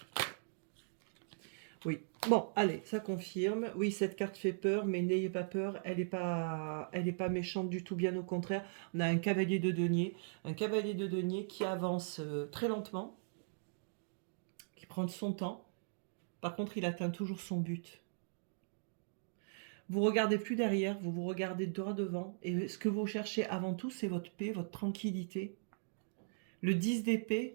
Oui. Bon, allez, ça confirme. Oui, cette carte fait peur, mais n'ayez pas peur. Elle n'est pas méchante du tout, bien au contraire. On a un cavalier de denier. Un cavalier de denier qui avance très lentement, qui prend son temps. Par contre, il atteint toujours son but. Vous regardez plus derrière, vous vous regardez droit devant. Et ce que vous cherchez avant tout, c'est votre paix, votre tranquillité. Le 10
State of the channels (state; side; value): silent; left; digital silence